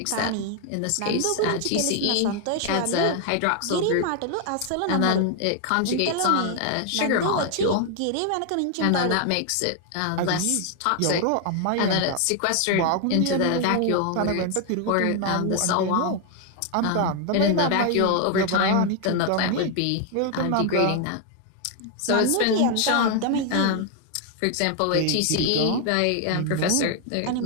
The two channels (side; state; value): both; different; correlation 0.00